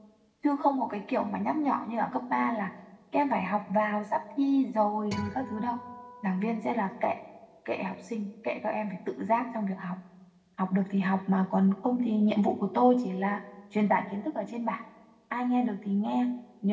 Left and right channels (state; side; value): identical; both; correlation 1.00